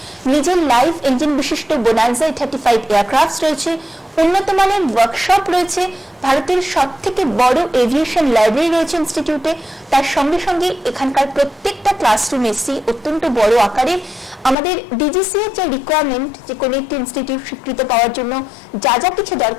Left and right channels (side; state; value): right; drops out; at 14.6 s